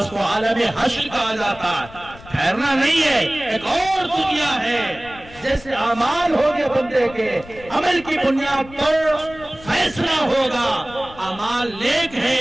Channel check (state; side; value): noise; left; rumble, 19 dB below the sound